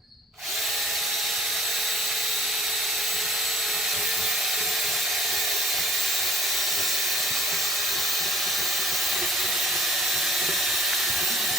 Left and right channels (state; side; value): normal; both; correlation 0.53